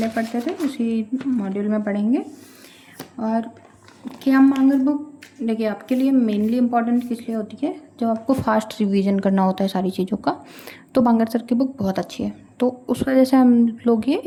पढ़ते थे उसी मॉड्यूल में पढ़ेंगे। और क्या मांगर बुक देखिए आपके लिए मेनली इम्पॉर्टेंट किस लिए होती है, जब आपको फास्ट रिवीजन करना होता है सारी चीज़ों का, तो बांगर सर की बुक बहुत अच्छी है, तो उस वजह से हम लोग ये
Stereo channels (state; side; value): identical; both; correlation 1.00